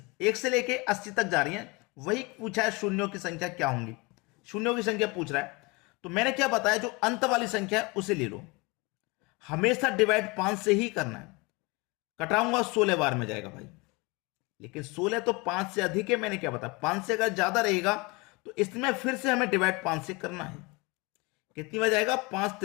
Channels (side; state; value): right; quieter; 26.1 dB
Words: 1 से लेके 80 तक जा रही है। वही पूछा है शून्यों की संख्या क्या होंगी। शून्यों की संख्या पूछ रहा है। तो मैंने क्या बताया, जो अंत वाली संख्या है उसे ले लो। हमेशा डिवाइड 5 से ही करना है। कटाऊंगा 16 बार में जाएगा भाई, लेकिन 16 तो 5 से अधिक है। मैंने क्या बताया, 5 से अगर ज्यादा रहेगा तो इसमें फिर से हमें डिवाइड 5 से करना है। कितनी बार जाएगा? 5